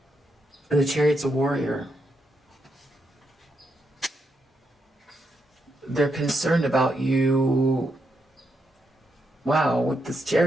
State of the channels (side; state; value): both; normal; correlation 0.81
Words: And the chariot's a warrior. They're concerned about you. Wow, with this